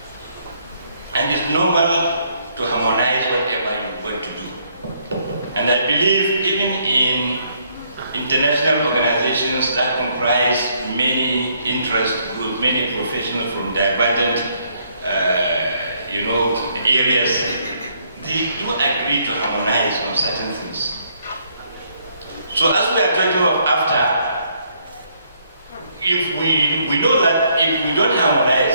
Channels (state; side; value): inverted; both; correlation -0.69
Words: And it's normal to harmonize whatever you want to do. And I believe even in international organizations that comprise many interest groups, many professionals from divergent areas, they do agree to harmonize on certain things. So as we are talking of after, if we know that if we don't